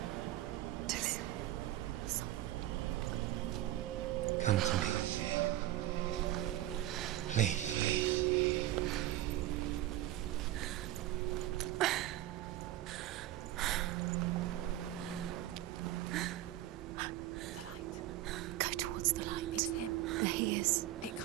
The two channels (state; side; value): quieter; left; 14.5 dB